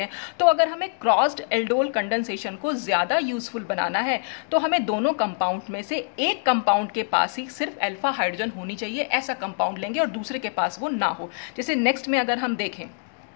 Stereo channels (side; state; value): right; silent; digital silence